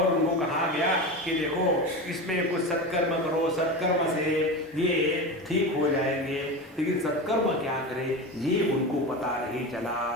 उनको कहा गया कि देखो इसमें कुछ सत्कर्म करो, सत्कर्म से ये ठीक हो जाएंगे। लेकिन सत्कर्म क्या करे ये उनको पता नहीं चला।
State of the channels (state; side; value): normal; both; correlation 0.24